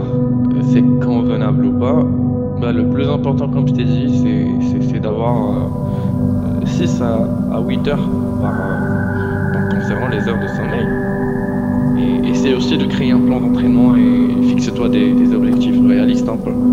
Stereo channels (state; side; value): identical; both; correlation 1.00